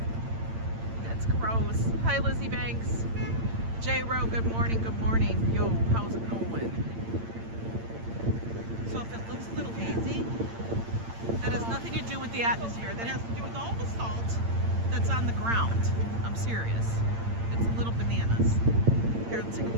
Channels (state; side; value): late; left; 8.8 ms